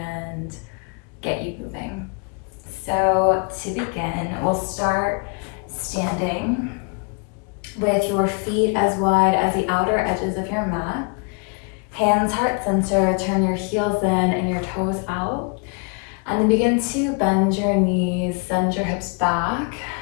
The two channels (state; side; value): quieter; right; 33.9 dB